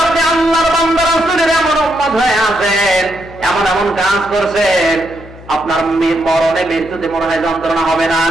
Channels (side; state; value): left; noise; hum, 19 dB below the sound